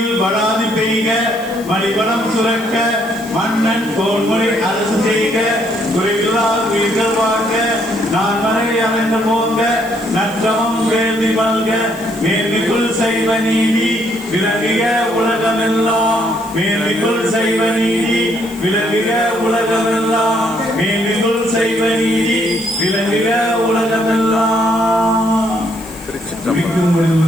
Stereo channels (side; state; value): left; noise; hiss, 19 dB below the sound